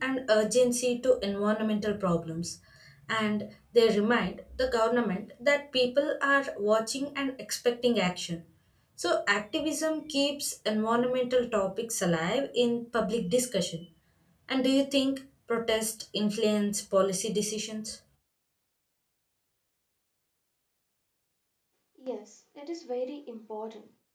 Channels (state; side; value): identical; both; correlation 1.00